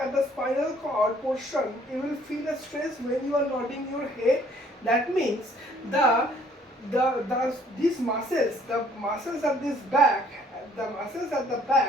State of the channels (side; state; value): both; normal; correlation 0.60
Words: cord portion. You will feel a stress when you are nodding your head. That means these muscles, the muscles at this back, the muscles at the